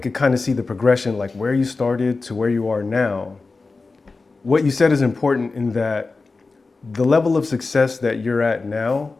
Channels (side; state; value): right; quieter; 3.9 dB